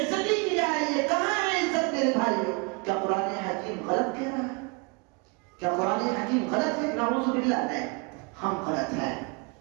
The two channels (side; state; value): left; quieter; 31.4 dB